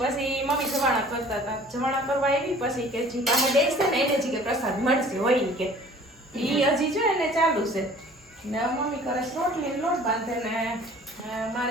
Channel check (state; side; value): normal; both; correlation 0.49